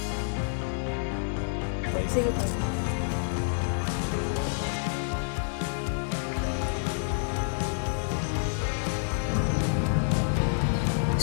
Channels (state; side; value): silent; right; 59 dB below the other